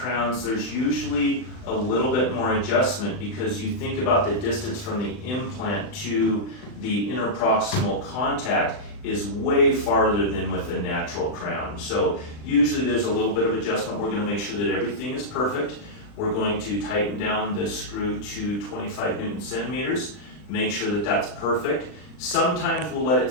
there's usually a little bit more adjustment because you think about the distance from the implant to the interproximal contact is way farther than with a natural crown. So usually there's a little bit of adjustment. We're going to make sure that everything is perfect. We're going to tighten down the screw to 25 Newton centimeters, make sure that that's perfect. Sometimes we'll let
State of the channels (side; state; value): right; late; 39 ms